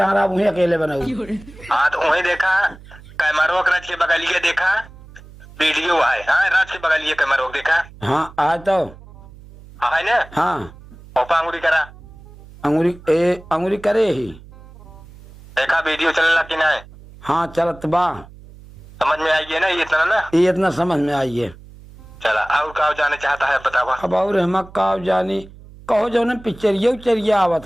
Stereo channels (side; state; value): right; noise; hum, 20 dB below the sound